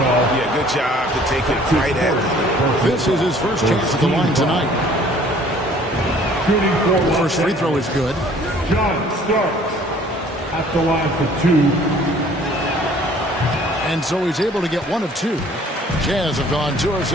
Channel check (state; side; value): normal; both; correlation 0.54